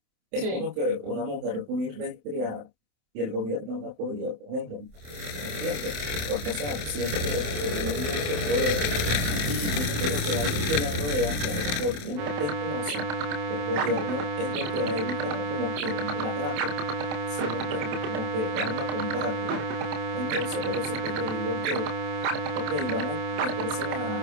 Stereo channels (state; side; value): late; left; 27 ms